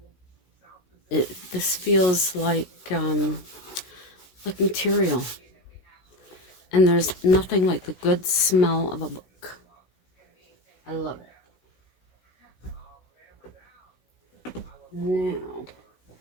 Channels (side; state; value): right; late; 16 ms